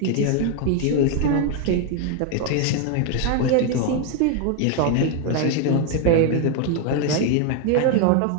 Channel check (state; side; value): different; both; correlation 0.01